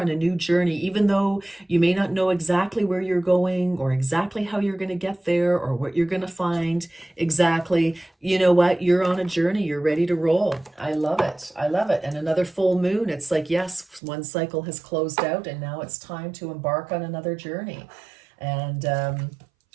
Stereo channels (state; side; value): drops out; left; at 14.0 s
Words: a new journey. Even though you may not know exactly where you're going or exactly how you're going to get there or what you're going to find exactly, you know what? You're on a journey. You're ready to roll. I love it. I love it. And another full moon. It's like, yes, one cycle has closed out and now it's time to embark on another journey. And,